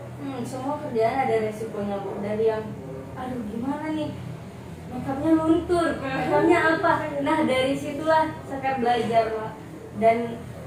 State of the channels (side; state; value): both; identical; correlation 1.00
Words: semua kerjaan ada resikonya Bu. Dari yang aduh gimana nih, makeupnya luntur, makeupnya apa. Nah dari situlah Sekar belajar Pak. Dan